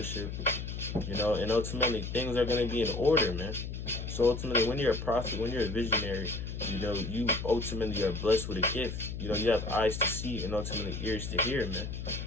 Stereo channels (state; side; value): noise; left; hum, 6 dB below the sound